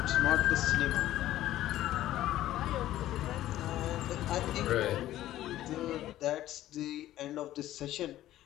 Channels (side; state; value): right; quieter; 14.0 dB